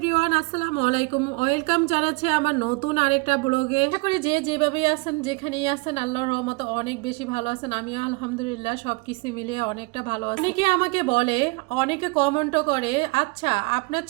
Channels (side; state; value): left; quieter; 27.3 dB